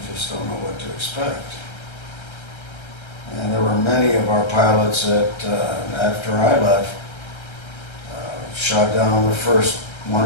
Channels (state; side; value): late; right; 1.3 ms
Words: just don't know what to expect. And there were many of our pilots that, after I left, shot down on their first 1